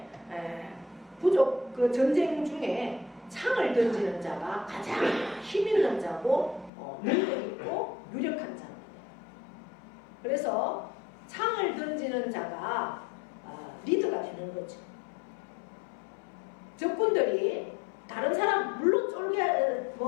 부족 그 전쟁 중에 창을 던지는 자가 가장 힘 있는 자고 능력 있고 유력한 자입니다. 그래서 창을 던지는 자가 리더가 되는 거죠. 적군들이 다른 사람 물론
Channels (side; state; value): right; drops out; at 6.7 s